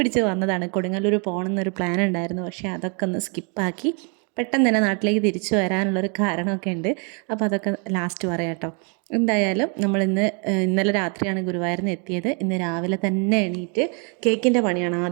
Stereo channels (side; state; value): left; quieter; 36.7 dB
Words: വന്നതാണ്. കൊടുങ്ങല്ലൂർ പോകണമെന്നൊരു പ്ലാൻ ഉണ്ടായിരുന്നു, പക്ഷേ അതൊക്കെ ഒന്ന് സ്കിപ്പാക്കി പെട്ടെന്ന് തന്നെ നാട്ടിലേക്ക് തിരിച്ചു വരാനുള്ളൊരു കാരണമൊക്കെ ഉണ്ട്. അപ്പോൾ അതൊക്കെ ലാസ്റ്റ് പറയാം കേട്ടോ. എന്തായാലും ഇന്നലെ രാത്രിയാണ് ഗുരുവായൂരിൽ നിന്ന് എത്തിയത്. ഇന്ന് രാവിലെ തന്നെ എണീറ്റ് കേക്കിൻ്റെ പണിയാണ്